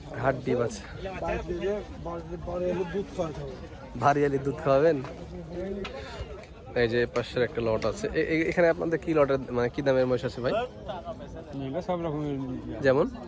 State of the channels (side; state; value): both; identical; correlation 1.00